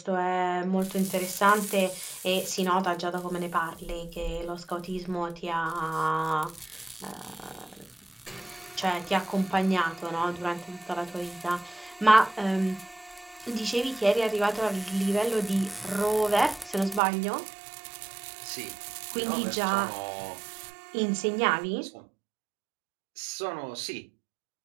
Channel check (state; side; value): drops out; left; at 17.0 s